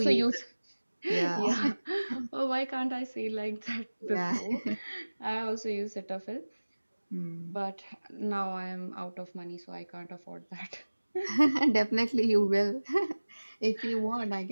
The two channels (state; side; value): inverted; both; correlation -1.00